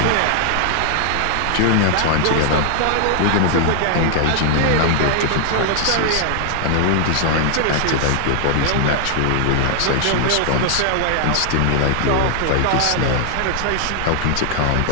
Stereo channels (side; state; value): both; different; correlation 0.00